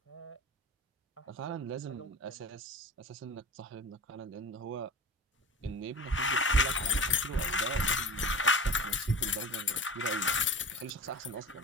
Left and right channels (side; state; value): both; normal; correlation 0.33